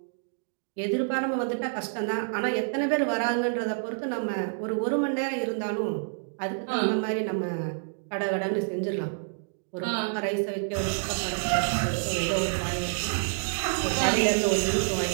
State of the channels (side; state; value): left; silent; digital silence